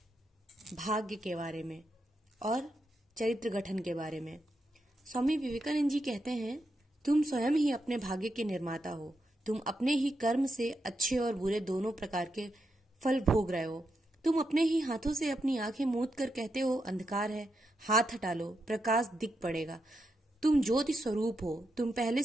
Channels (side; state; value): both; normal; correlation 0.84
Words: भाग्य के बारे में और चरित्र गठन के बारे में। स्वामी विवेकानंद जी कहते हैं, तुम स्वयं ही अपने भाग्य के निर्माता हो। तुम अपने ही कर्म से अच्छे और बुरे दोनों प्रकार के फल भोग रहे हो। तुम अपने ही हाथों से अपनी आंखें मूंद कर कहते हो अंधकार है, हाथ हटा लो, प्रकाश दिख पड़ेगा। तुम ज्योति स्वरूप हो, तुम पहले